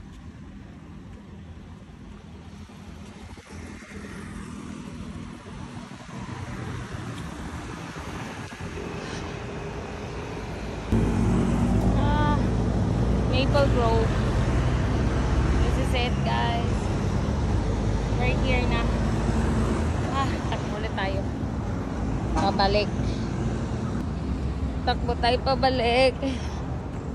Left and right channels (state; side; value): identical; both; correlation 1.00